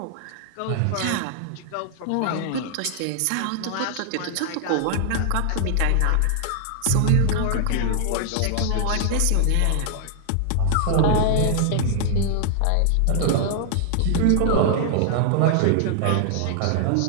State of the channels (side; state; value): both; different; correlation 0.00